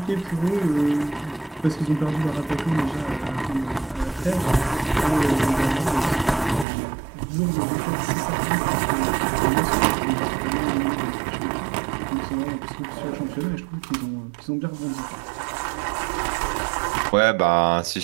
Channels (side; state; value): left; drops out; at 6.7 s